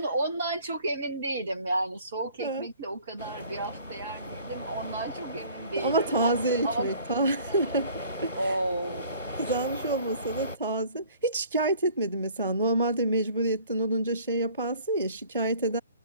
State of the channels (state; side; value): inverted; both; correlation -0.52